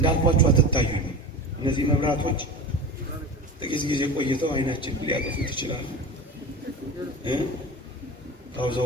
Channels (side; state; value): both; normal; correlation 0.30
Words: አትታዩኝ። እነዚህ መብራቶች ጥቂት ጊዜ ቆይተው አይናችን ሊያጠፉት ይችላሉ።